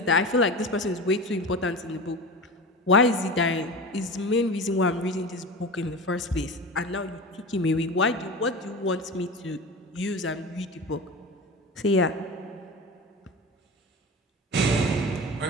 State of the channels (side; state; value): both; normal; correlation 0.30